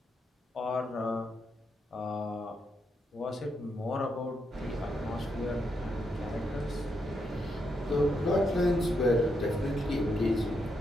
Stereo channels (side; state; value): both; normal; correlation 0.81